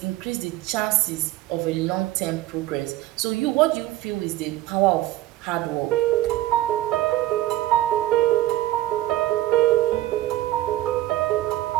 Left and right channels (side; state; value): left; quieter; 15.5 dB